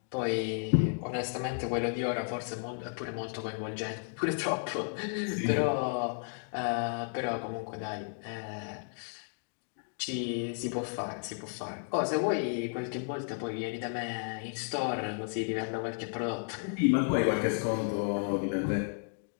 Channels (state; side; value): silent; right; 56 dB below the other